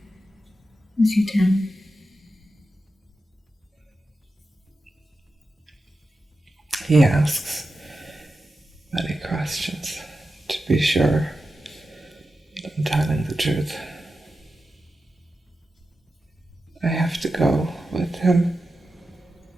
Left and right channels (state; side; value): normal; both; correlation 0.91